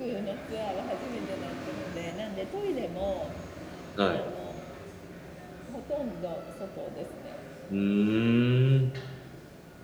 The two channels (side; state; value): both; identical; correlation 1.00